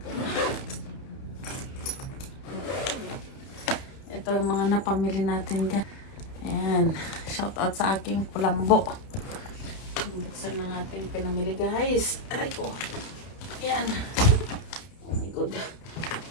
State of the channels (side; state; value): right; late; 31 ms